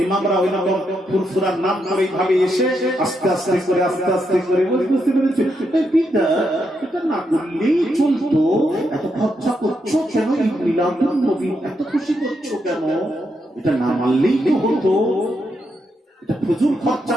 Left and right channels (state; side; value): normal; both; correlation 0.81